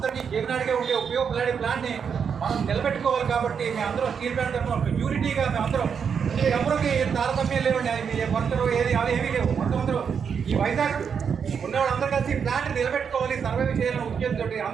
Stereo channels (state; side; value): quieter; left; 6.8 dB